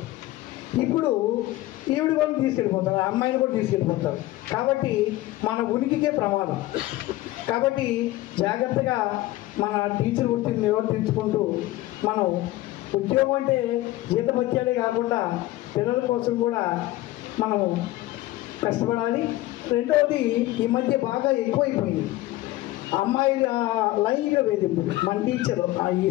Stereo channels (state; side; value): quieter; right; 17.0 dB